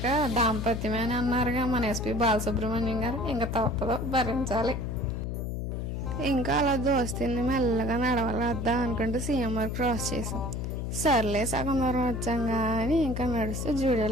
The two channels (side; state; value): left; noise; hum, 3 dB below the sound